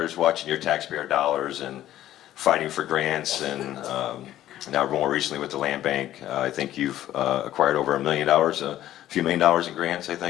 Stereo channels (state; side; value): quieter; right; 13.1 dB